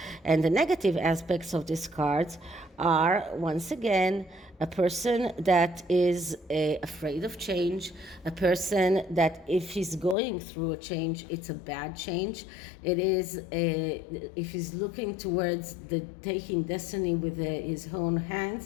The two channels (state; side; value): drops out; right; at 10.2 s